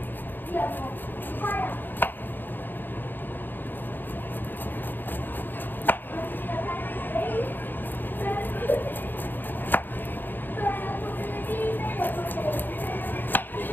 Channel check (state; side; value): late; right; 0.092 ms